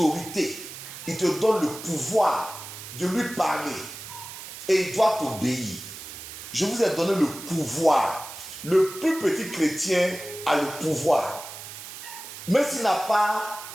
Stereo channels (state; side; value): noise; right; hiss, 12 dB below the sound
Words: Il te donne le pouvoir de lui parler. Et il doit t'obéir. Je vous ai donné le pouvoir. Le plus petit chrétien a le pouvoir. Même s'il n'a pas